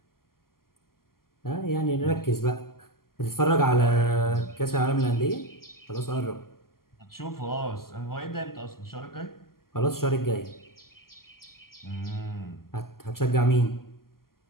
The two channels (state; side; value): late; right; 0.92 ms